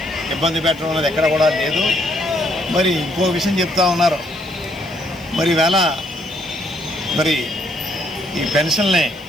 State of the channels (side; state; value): left; noise; hiss, 27 dB below the sound